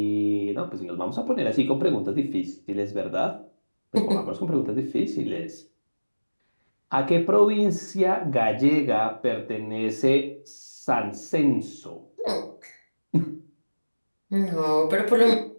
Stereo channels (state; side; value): inverted; both; correlation -1.00